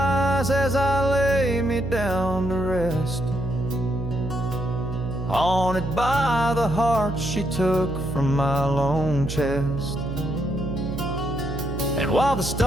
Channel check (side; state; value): right; noise; hum, 5 dB below the sound